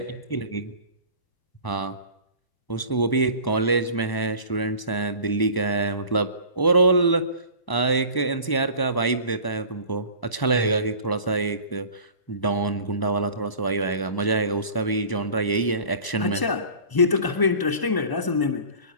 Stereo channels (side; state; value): right; late; 1.0 ms